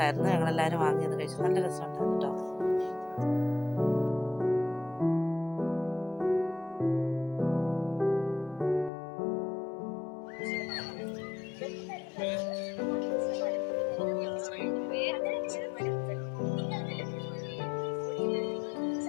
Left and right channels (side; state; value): right; drops out; at 8.9 s